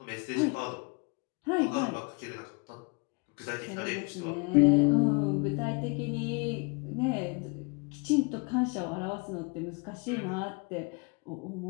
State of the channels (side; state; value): right; quieter; 31.2 dB